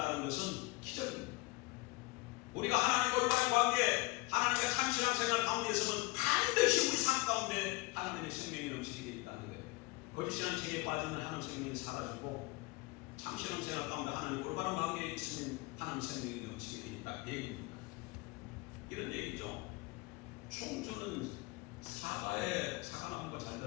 것은 기적입니다. 우리가 하나님과 올바른 관계, 하나님과 참 신앙생활 가운데 있으면 반드시 우리 삶 가운데 하나님의 생명이 넘치게 되어 있다는 거예요. 거짓 신앙 체계에 빠지면 하나님의 생명이 사라지고 참 신앙생활 가운데 하나님 올바른 관계에 있으면 하나님 생명이 넘치게 돼 있다. 얘기입니다. 이런 얘기죠. 충주는 사과나무가 잘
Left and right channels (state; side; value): quieter; right; 24.3 dB